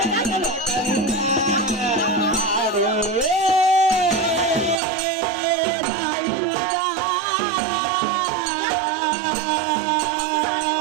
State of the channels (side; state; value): left; drops out; at 4.8 s